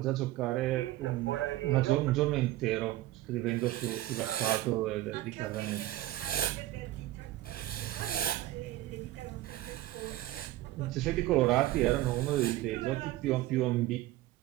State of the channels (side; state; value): left; quieter; 15.9 dB